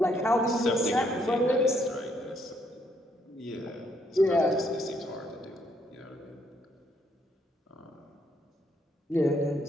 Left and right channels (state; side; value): normal; both; correlation 0.71